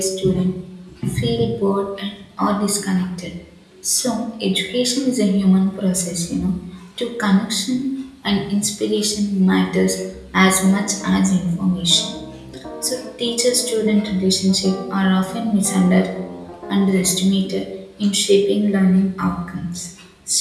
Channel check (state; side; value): identical; both; correlation 1.00